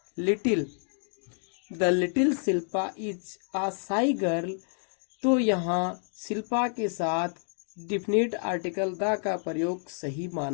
little, the little Shilpa is a shy girl, तो यहाँ शिल्पा के साथ डेफिनेट आर्टिकल द का प्रयोग सही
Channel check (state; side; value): silent; right; 59 dB below the other